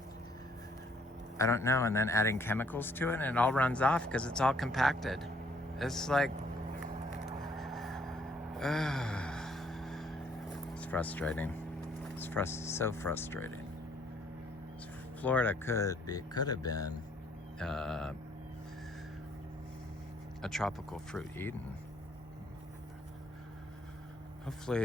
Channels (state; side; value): normal; both; correlation 0.64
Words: I don't know. And then adding chemicals to it and it all runs off because it's all compacted. It's like, it's frustrating. It's so frustrating. Florida could have been a tropical fruit Eden.